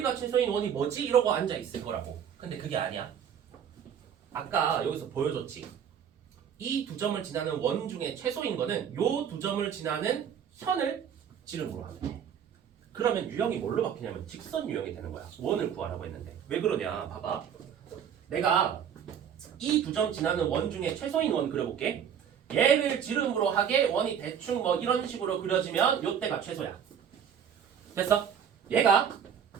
최소인 원이 뭐지? 이러고 앉아 있을 거라고. 근데 그게 아니야. 아까 여기서 보여줬지. 이 두 점을 지나는 원 중에 최소인 거는 요 두 점을 지나는 현을 지름으로 하면 돼. 그러면 유형이 뭘로 바뀌냐면 직선 유형이 되는 거야. 원을 구하라고 했는데. 왜 그러냐? 봐봐. 내가 이 두 점 지나는 원 중에 최소인 원 그려볼게. 얘를 지름으로 하게 원이 대충 뭐 이런 식으로 그려지면 요때가 최소야. 됐어? 얘가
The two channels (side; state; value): left; quieter; 8.3 dB